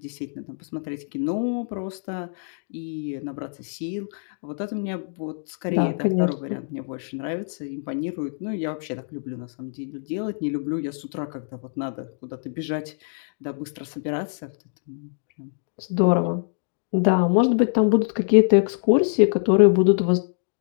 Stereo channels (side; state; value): right; silent; digital silence